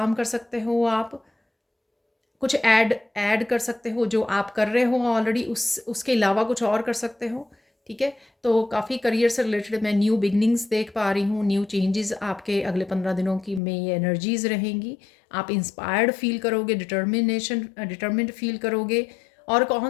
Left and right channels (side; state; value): right; drops out; at 13.6 s